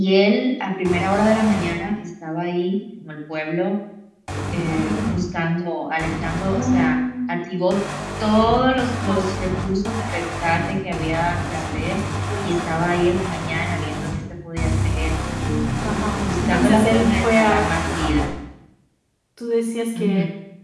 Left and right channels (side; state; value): both; identical; correlation 1.00